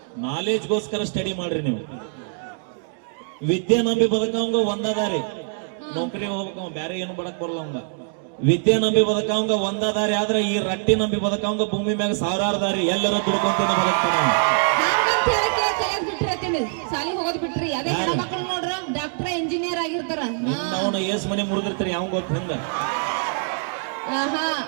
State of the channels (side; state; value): left; silent; digital silence